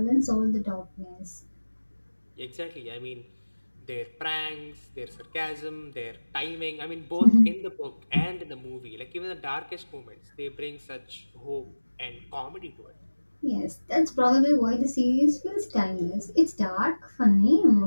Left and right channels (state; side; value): inverted; both; correlation -1.00